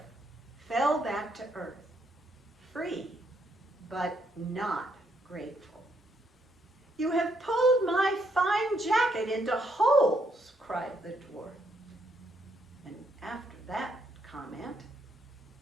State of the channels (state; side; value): normal; both; correlation 0.74